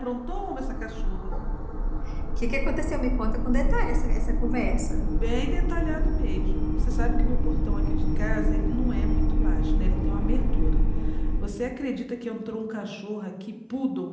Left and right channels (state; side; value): identical; both; correlation 1.00